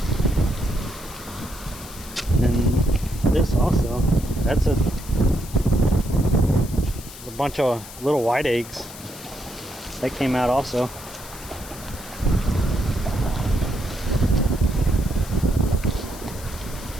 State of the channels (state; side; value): noise; left; hiss, 15 dB below the sound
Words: And this also, that's a bunch of little white eggs that came out also.